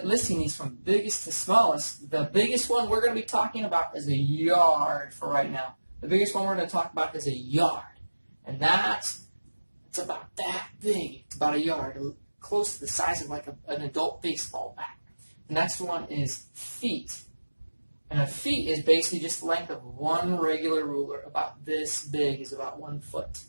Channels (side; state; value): both; inverted; correlation -1.00